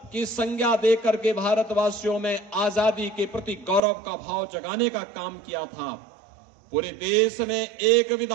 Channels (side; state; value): left; drops out; at 3.8 s